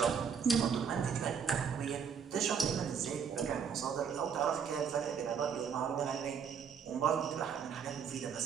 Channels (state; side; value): quieter; left; 6.9 dB